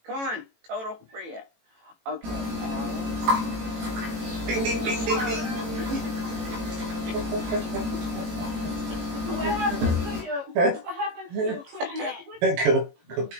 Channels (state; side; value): late; left; 18 ms